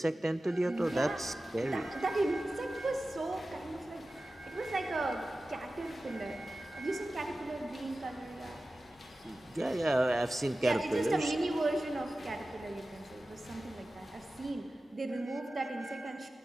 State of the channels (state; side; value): normal; both; correlation 0.95